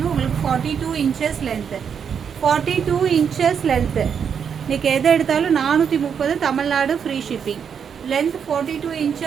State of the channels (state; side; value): quieter; left; 7.3 dB